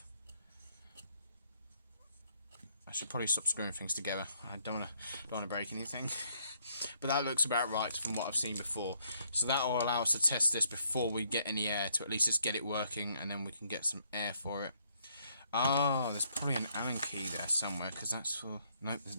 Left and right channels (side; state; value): both; inverted; correlation -0.70